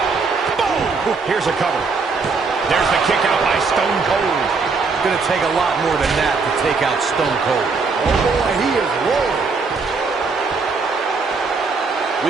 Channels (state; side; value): quieter; left; 4.5 dB